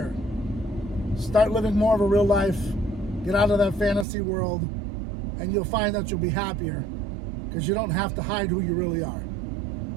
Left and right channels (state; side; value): drops out; left; at 4.0 s